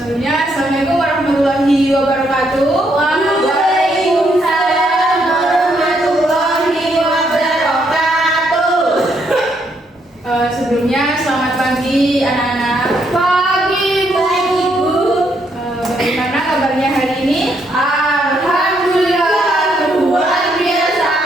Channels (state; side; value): normal; both; correlation 0.74